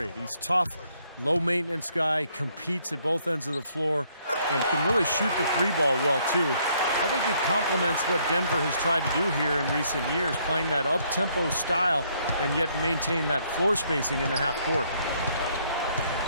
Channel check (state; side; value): inverted; both; correlation -0.68